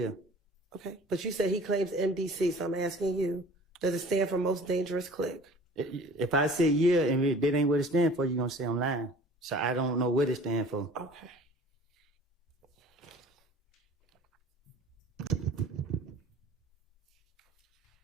Okay. But you said he claims MDC, so I'm asking you, does it stand for most dangerous clique? If I say yeah and that ain't what it stands for, you're going to say I'm lying. So I don't know what it stands for. Okay.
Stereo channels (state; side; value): normal; both; correlation 0.46